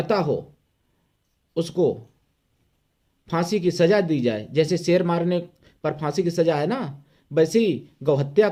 हो उसको फांसी की सजा दी जाए। जैसे शेर मारने पर फांसी की सजा है ना, वैसे ही गौ हत्या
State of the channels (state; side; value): identical; both; correlation 1.00